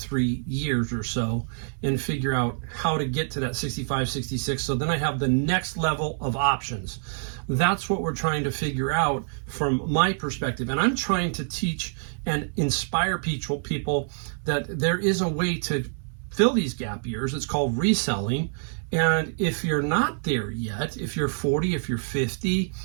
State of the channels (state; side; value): silent; left; 61 dB below the other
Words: years or so and figure out how to get to that 65, 66. So then I have the next level of options. That's what we're trying to figure out from my perspective. And I'm trying to teach and inspire people that there is a way to fill these gap years. It's called reselling. And if you're not there yet, if you're 40, if you're 50,